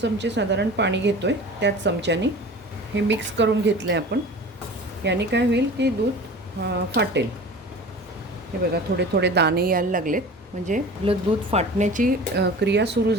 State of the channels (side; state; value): both; normal; correlation 0.38